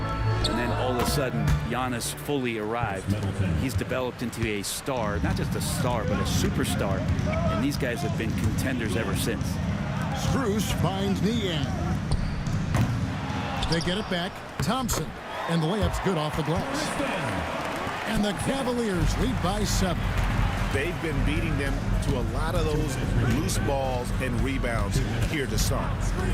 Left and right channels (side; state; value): both; identical; correlation 1.00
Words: then all of a sudden, Giannis fully arrived. He's developed into a star, not just a star, but a superstar, and these guys have been contenders ever since. Strus finds Niang. They get it back. Thompson, and the layup's good off the glass. And the Cavaliers lead by 7. They've been beating them to a lot of those loose balls and rebounds here to start.